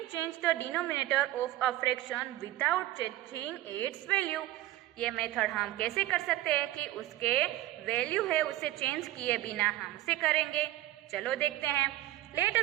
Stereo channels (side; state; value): left; quieter; 15.4 dB